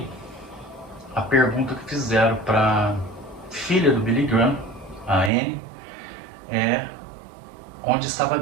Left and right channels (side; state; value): left; drops out; at 5.3 s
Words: a pergunta que fizeram para filha do Billy Graham, a Anne, é: onde estava